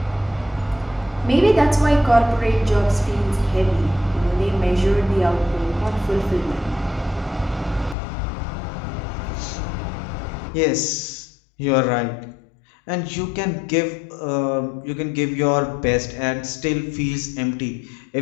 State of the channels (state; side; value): drops out; right; at 8.0 s